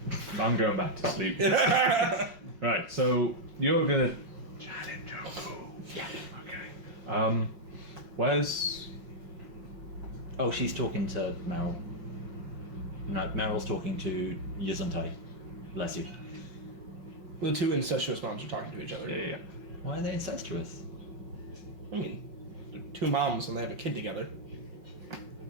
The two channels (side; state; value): left; late; 5.4 ms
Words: I'm going back to sleep. Right, so you're gonna challenge Joku. Yeah. Okay. Where's Oh, she's talking to Meryl. No, Meryl's talking to Yizuntai. Bless you. The two incestuous moms are talking to each other. yeah. Why are they incestuous? I mean, they're two moms and they have a kid together.